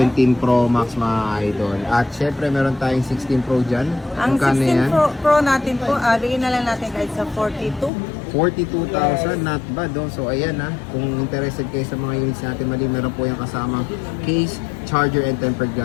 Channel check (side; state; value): right; drops out; at 7.9 s